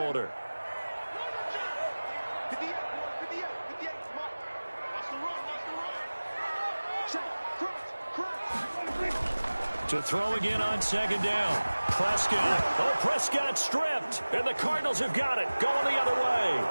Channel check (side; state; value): both; inverted; correlation -1.00